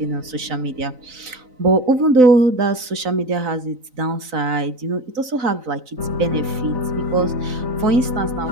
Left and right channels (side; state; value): left; late; 3.9 ms